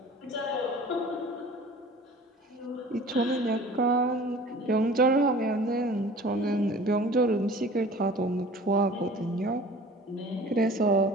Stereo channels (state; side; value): normal; both; correlation 0.44